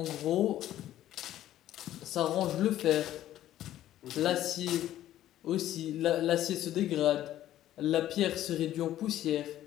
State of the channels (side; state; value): right; quieter; 13.0 dB